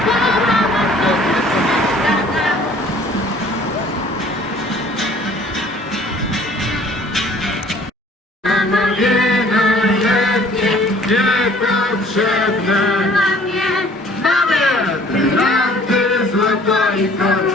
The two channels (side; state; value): both; normal; correlation 0.53